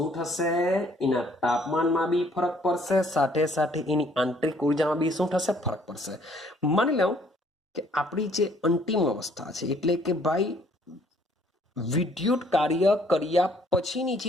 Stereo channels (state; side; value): normal; both; correlation 0.62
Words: થશે? એના તાપમાનમાં બી ફરક પડશે, સાથે સાથે એની આંતરિક ઉર્જામાં બી શું થશે? ફરક પડશે. માની લો કે આપણી જે અંતિમ અવસ્થા છે, એટલે કે ભાઈ વિદ્યુત કાર્ય કર્યા પછીની